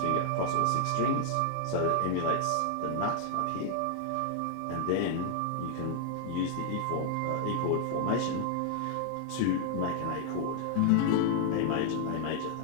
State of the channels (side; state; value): both; different; correlation 0.00